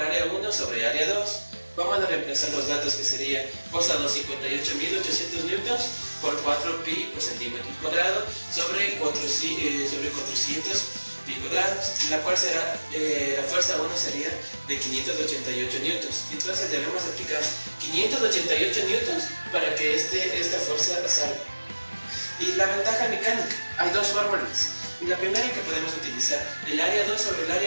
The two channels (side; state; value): both; inverted; correlation -1.00